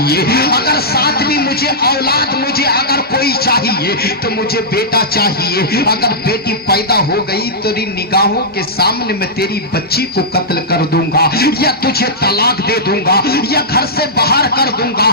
अगर 7वीं मुझे औलाद, मुझे अगर कोई चाहिए तो मुझे बेटा चाहिए, अगर बेटी पैदा हो गई तो तेरी निगाहों के सामने मैं तेरी बच्ची को कत्ल कर दूंगा, या तुझे तलाक दे दूंगा, या घर से बाहर कर दूंगा।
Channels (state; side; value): normal; both; correlation -0.12